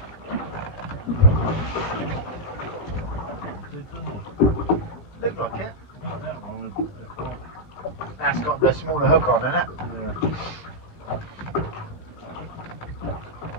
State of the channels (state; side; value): late; right; 17 ms